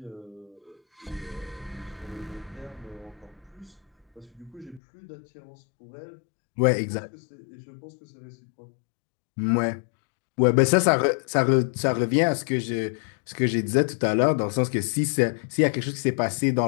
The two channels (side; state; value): right; drops out; at 4.8 s